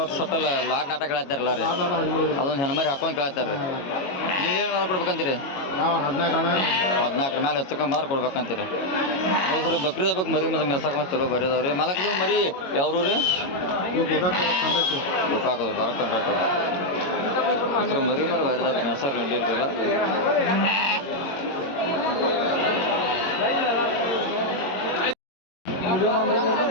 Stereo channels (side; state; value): right; late; 22 ms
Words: ಸಟ್ಟಲ್ಲ ಲಾಟ್ ನಾಟ ಕೇಳ್ತಾರಲ್ಲ ರೀ. ಅದೊಂದು ಹೆಣ್ಮರಿ ಹಾಕೊಂಡು ಕೇಳ್ತಾರೆ. ನೀವೇನು ಮಾತ್ರ ಕೊಡ್ಬೇಕಂತೀರಿ? 14 ಮೇಲೆ ಹೆಚ್ಚುಕೊಂಬಂದ್ರೆ ಕೊಡ್ಬೇಕಂತೀರಿ. ಹೌದು ಬಕ್ರಿ ಹಬ್ಬಕ್ಕೆ ಮರಿ ಮತ್ತೆ ಮೆಸಾಕ ಮಸ್ತ್ ಚಲೋ ಬರೀದಾವ್ರಿ. ಮಾಲಕ್ರಿ ಮರಿ ಯಾವ್ರು ರೀ? ಗೋಕಾಕೋದು ಬರಕ್ಕೆ ಕಂಡ್ರಾಟು ಮರಿ ಮರಿ ಬರೀದಾರ ಮೆಸಾರ್ ನಡಿಲ್ರಿಲ್ಲ.